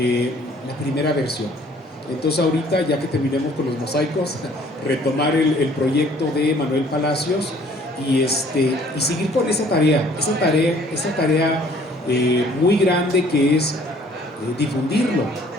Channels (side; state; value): both; normal; correlation 0.57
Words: la primera versión. Entonces ahorita, ya que terminemos con los mosaicos, retomar el proyecto de Emanuel Palacios y seguir con esa tarea muy grande, que es difundirlo